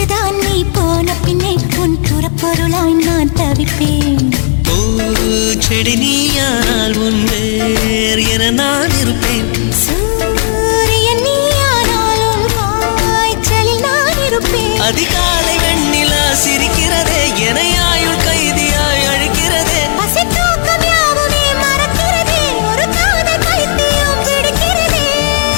நீ போன பின்னே உன் புறப்பொருளாய் நான் தவிப்பேன். பூச்செடி நீயானால் உன் வேர் என நான் இருப்பேன். சூரியன் நீயானால் உன் காய்ச்சலில் நான் இருப்பேன். அதிகாலை வெண்ணிலா சிரிக்கிறதே என ஆயுள் கைதியாய் அழைக்கிறதே. பசி தூக்கம் யாவுமே மறக்கிறதே, ஒரு காதல் பைத்தியம் பிடிக்கிறதே.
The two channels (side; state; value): right; silent; digital silence